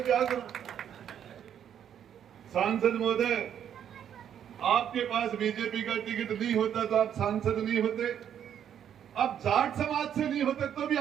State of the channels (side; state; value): left; quieter; 9.3 dB